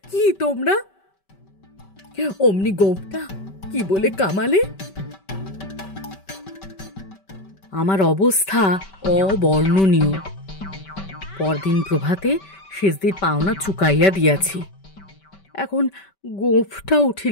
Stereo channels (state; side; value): late; right; 5.2 ms